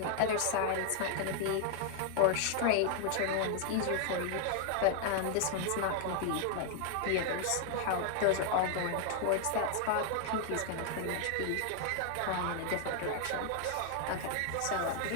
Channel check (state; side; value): different; both; correlation 0.00